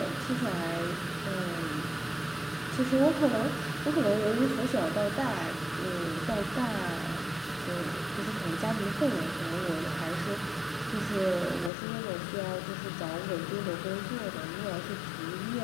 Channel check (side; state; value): right; drops out; at 11.7 s